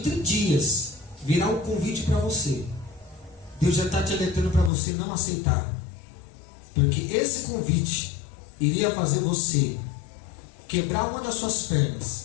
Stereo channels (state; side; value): drops out; right; at 4.7 s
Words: dias virá um convite para você. Deus já está te alertando para você não aceitar. Porque esse convite iria fazer você quebrar uma das suas